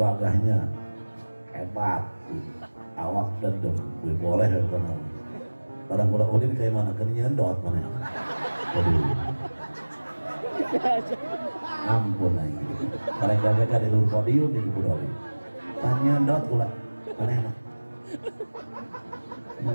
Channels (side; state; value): both; inverted; correlation -1.00